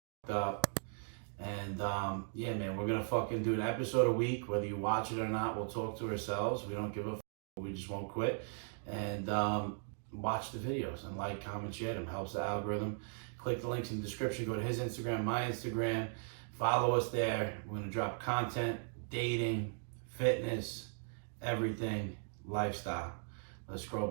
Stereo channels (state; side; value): silent; left; 52 dB below the other